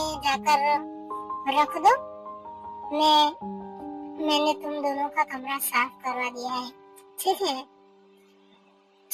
जाकर रख दो। मैंने तुम दोनों का कमरा साफ करवा दिया है। ठीक है?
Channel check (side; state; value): both; identical; correlation 1.00